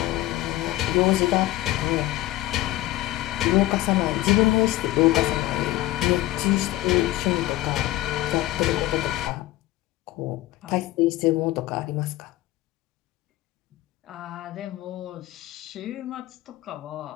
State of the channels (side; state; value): right; quieter; 16.7 dB